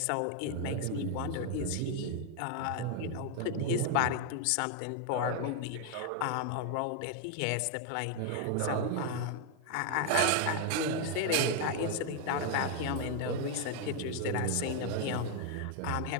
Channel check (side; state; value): both; different; correlation 0.00